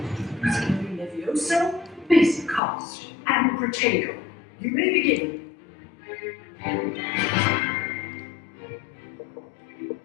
Using Levioso, basic cast, and Projector. You may begin.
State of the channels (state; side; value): drops out; right; at 2.6 s